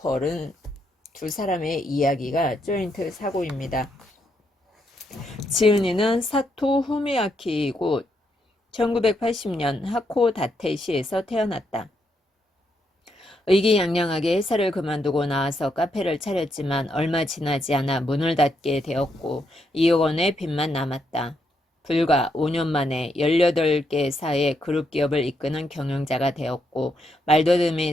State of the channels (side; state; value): both; normal; correlation 0.78